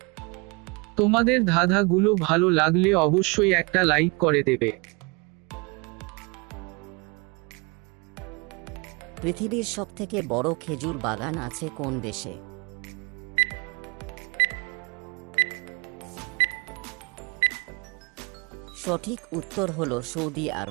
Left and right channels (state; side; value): quieter; left; 28.7 dB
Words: তোমাদের ধাঁধাগুলো ভালো লাগলে অবশ্যই একটা লাইক করে দেবে। পৃথিবীর সবথেকে বড় খেজুর বাগান আছে কোন দেশে? সঠিক উত্তর হলো সৌদি